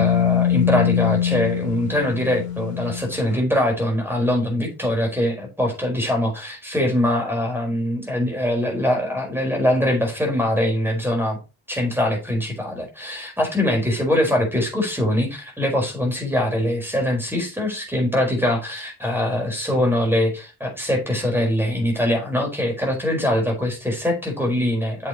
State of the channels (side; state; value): both; normal; correlation 0.59